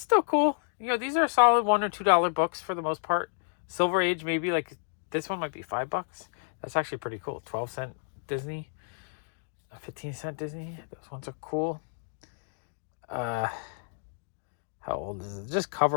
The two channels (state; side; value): silent; right; digital silence